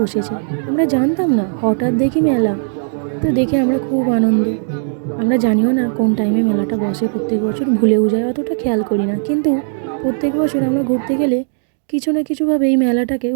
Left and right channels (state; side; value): silent; left; digital silence